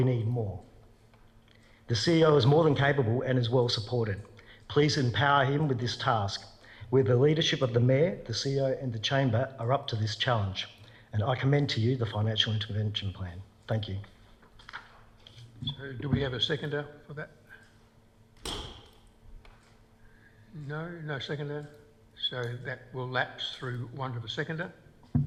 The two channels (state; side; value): identical; both; correlation 1.00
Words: need more. The CEO is more than capable and is well supported. Please empower him with this task. With the leadership of the Mayor, the CEO and the Chamber are up to this challenge. And I commend to you the Financial Intervention Plan. Thank you. So do we have a seconder for that? No seconder. So that will lapse through one of a seconder.